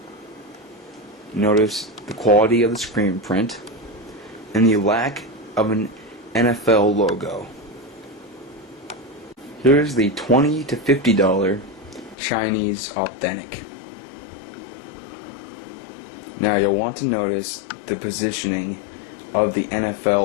Notice the quality of the screen print and the lack of an NFL logo. Here's the $20 to $50 Chinese Authentic. Now you'll want to notice the positioning of the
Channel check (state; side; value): drops out; right; at 12.2 s